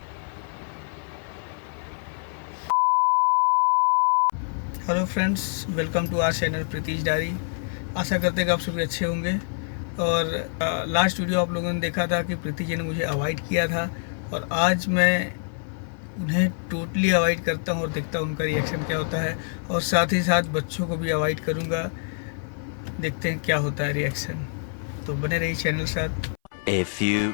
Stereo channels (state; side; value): silent; right; 60 dB below the other